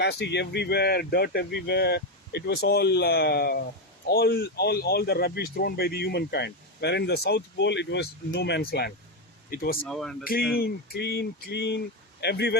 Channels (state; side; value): normal; both; correlation 0.09